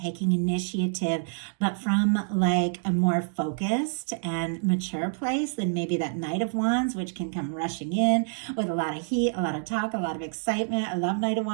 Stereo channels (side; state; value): left; silent; digital silence